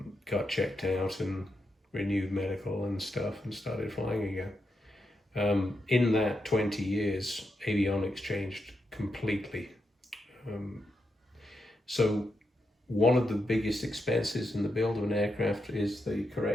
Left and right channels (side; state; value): both; normal; correlation 0.85